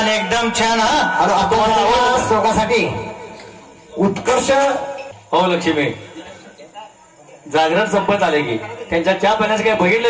एकदम छान. हा आता शोकासाठी उत्कर्ष हो लक्ष्मी, जागरण संपत आले की त्यांच्या चहा पाण्याचं काही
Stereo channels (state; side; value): identical; both; correlation 1.00